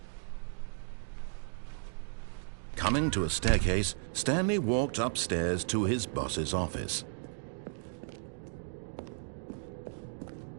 Coming to a staircase, Stanley walked upstairs to his boss's office.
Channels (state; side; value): silent; left; digital silence